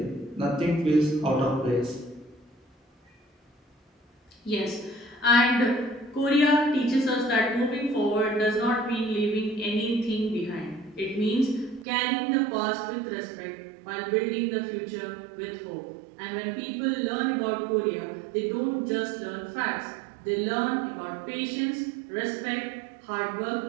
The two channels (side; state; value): left; drops out; at 11.9 s